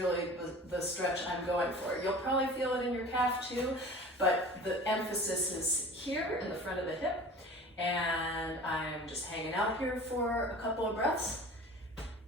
the stretch I'm going for. You'll probably feel it in your calf too, but the emphasis is here in the front of the hip. And I'm just hanging out here for a couple of breaths.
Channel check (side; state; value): both; normal; correlation 0.40